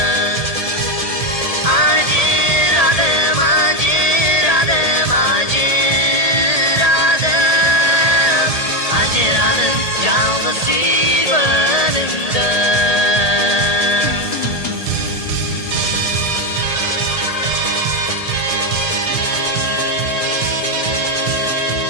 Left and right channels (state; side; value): late; right; 1.8 ms